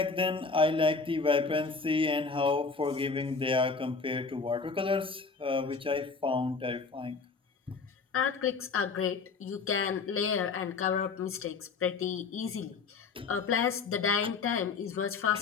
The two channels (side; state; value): right; quieter; 4.7 dB